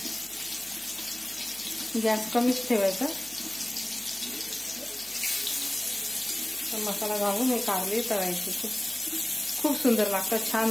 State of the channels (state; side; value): noise; left; hum, 28 dB below the sound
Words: गॅस कमीच ठेवायचा. मसाला घालून हे कारले तळायचे. खूप सुंदर लागतात, छान